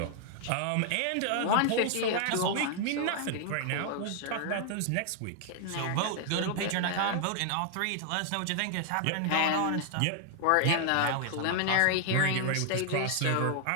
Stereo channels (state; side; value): different; both; correlation 0.00